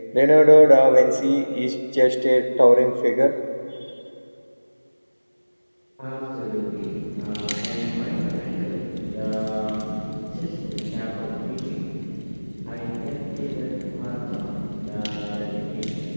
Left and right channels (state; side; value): inverted; both; correlation -1.00